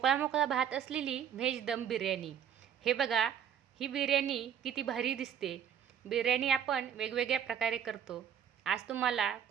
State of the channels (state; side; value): quieter; left; 8.6 dB